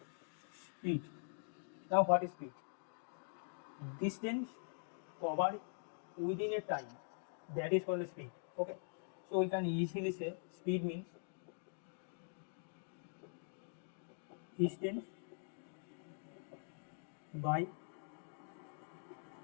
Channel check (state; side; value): silent; right; digital silence